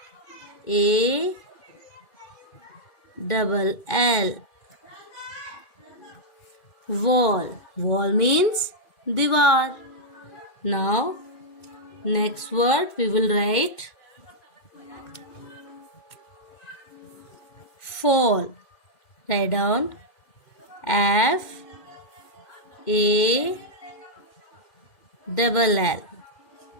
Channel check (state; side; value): late; right; 2.1 ms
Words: Wall. Wall means दीवार. Now next word we will write fall. Write down F-A-double-L.